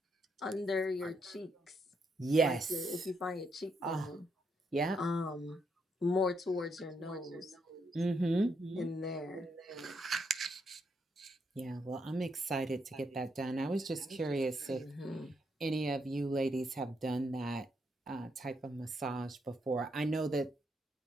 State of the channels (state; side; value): normal; both; correlation 0.78